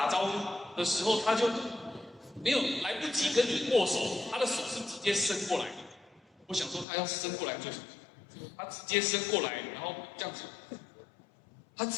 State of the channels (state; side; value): drops out; right; at 6.9 s